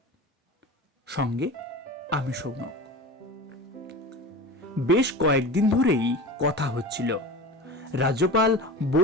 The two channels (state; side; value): normal; both; correlation 0.32